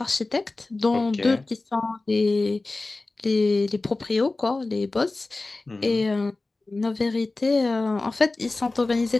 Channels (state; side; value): quieter; right; 3.2 dB